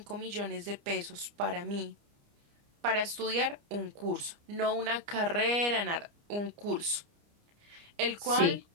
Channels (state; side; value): late; left; 29 ms